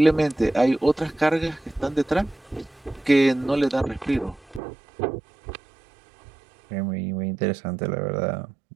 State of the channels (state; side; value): drops out; left; at 4.6 s